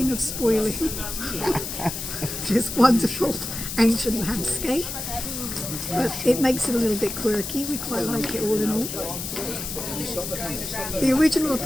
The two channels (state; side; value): noise; left; hiss, 6 dB below the sound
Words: of spoiling this wonderful ancient landscape. But it makes it a little bit quirky. We quite like it all in all. The original